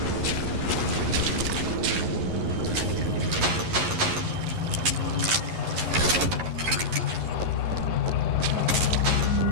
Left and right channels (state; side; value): late; left; 11 ms